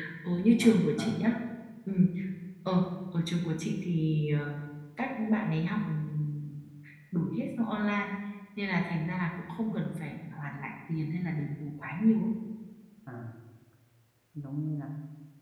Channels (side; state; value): both; identical; correlation 1.00